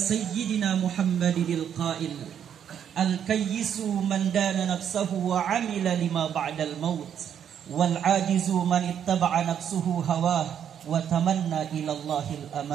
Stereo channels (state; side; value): quieter; left; 8.9 dB